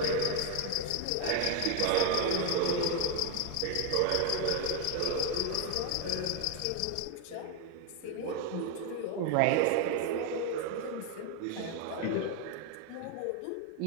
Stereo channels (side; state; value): both; different; correlation 0.01